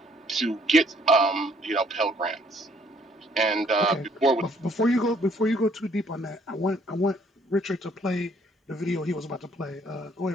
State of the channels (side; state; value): both; normal; correlation 0.64